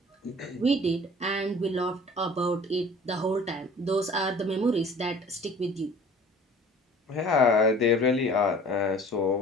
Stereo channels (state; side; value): normal; both; correlation 0.47